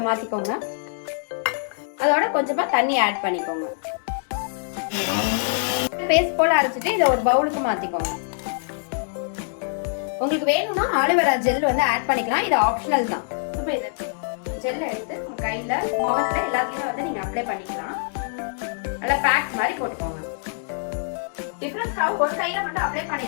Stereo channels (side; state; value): right; silent; digital silence